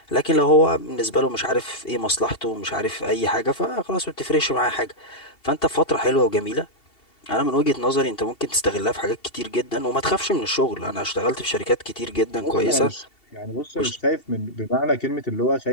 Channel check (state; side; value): late; right; 2.7 ms